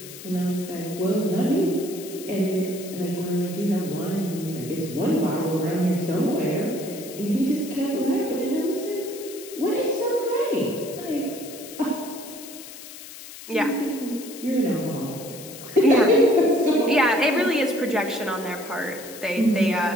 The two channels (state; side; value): noise; left; hiss, 14 dB below the sound